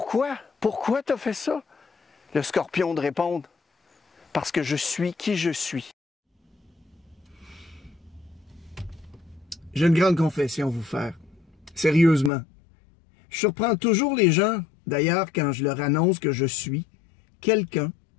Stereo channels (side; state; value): right; drops out; at 12.3 s